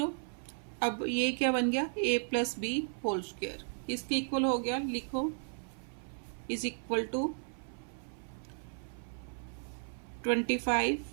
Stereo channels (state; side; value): silent; left; 55 dB below the other